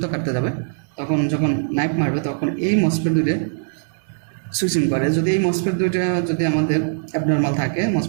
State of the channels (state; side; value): silent; left; digital silence